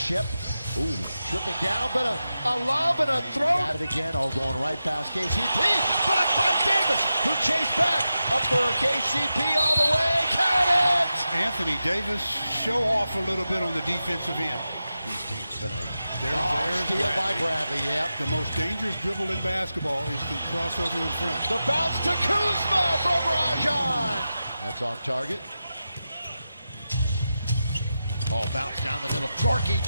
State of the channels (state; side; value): inverted; both; correlation -0.91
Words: Ooh, tripping down, but a lob and a throw. Got it again, going right past KCP. Blocked by Davis, who chased back. Up for KCP all the way, count it! Anthony Davis, show off a little bit on the defensive end. These teams tonight. There's steal by Bradley, yep. The most dangerous dribble in basketball is the crossover in front. The bounce to Kuzma from Rajon. That's off target. Oh, bounce down the middle. Gorky